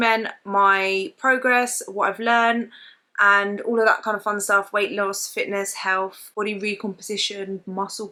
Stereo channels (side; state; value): both; identical; correlation 1.00